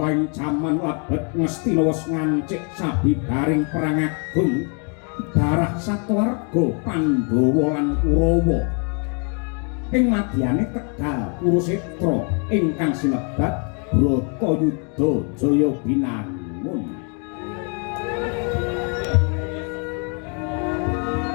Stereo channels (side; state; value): right; quieter; 38.6 dB